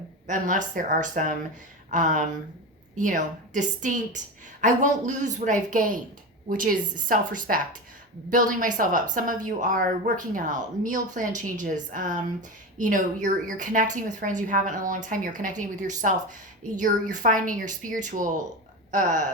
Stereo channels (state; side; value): normal; both; correlation 0.22